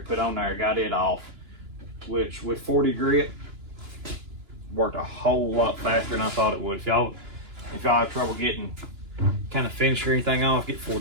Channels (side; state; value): left; late; 2.9 ms